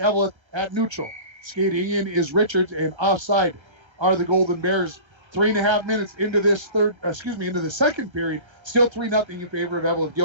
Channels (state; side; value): late; left; 1.3 ms